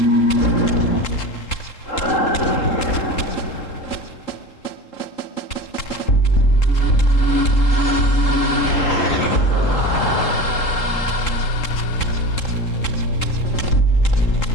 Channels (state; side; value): late; right; 3.7 ms